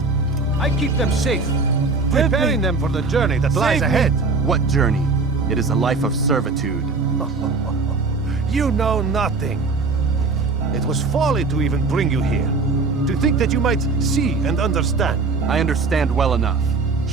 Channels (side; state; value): left; quieter; 4.0 dB